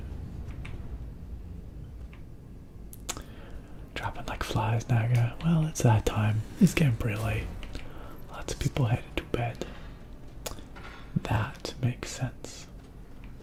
Dropping like flies, Naga. Well, it's that time. It's getting pretty late. Lots of people headed to bed. That makes sense.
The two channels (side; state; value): both; identical; correlation 1.00